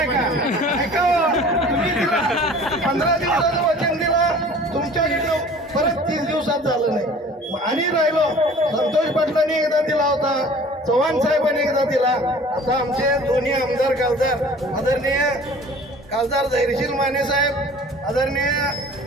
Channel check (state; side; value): normal; both; correlation 0.46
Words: तुम्ही 15 दिवसाचं वचन दिलं, तुमच्याकडे परत 30 दिवसात झालं नाही. आणि राहिलो, संतोष पाटलांनी एकदा दिला होता, चव्हाण साहेबांनी एकदा दिला. आता आमचे दोन्ही आमदार खासदार आदरणीय खासदार धैर्यशील माने साहेब, आदरणीय